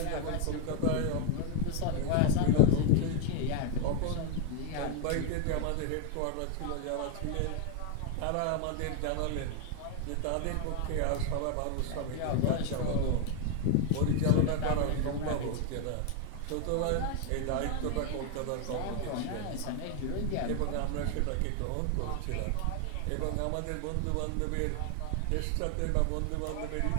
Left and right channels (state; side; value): different; both; correlation 0.01